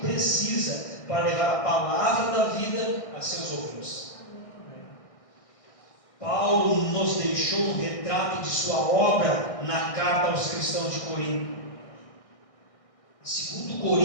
para levar a palavra da vida a seus ouvintes. Paulo nos deixou um retrato de sua obra na carta aos cristãos de Corinto. Em 2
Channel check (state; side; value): late; right; 1.6 ms